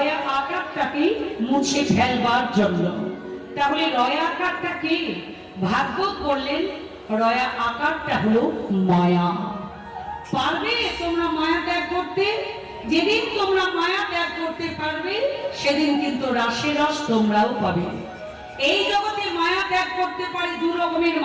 আকারটাকে মুছে ফেলবার জন্য। তাহলে রয়া আকারটা কি? ভাগবত বললেন রয়া আকারটা হলো মায়া। পারবে তোমরা মায়া ত্যাগ করতে? যেদিন তোমরা মায়া ত্যাগ করতে পারবে সেদিন কিন্তু রাসের রস তোমরাও পাবে। এই জগতে মায়া ত্যাগ করতে পারে দু রকমের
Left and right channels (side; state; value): both; identical; correlation 1.00